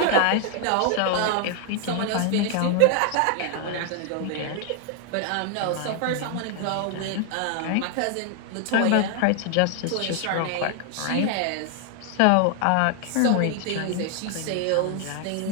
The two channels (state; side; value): different; both; correlation 0.00